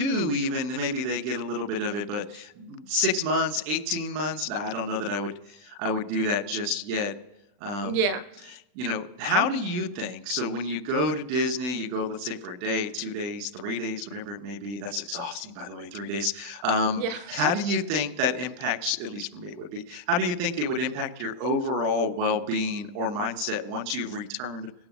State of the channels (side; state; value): left; late; 40 ms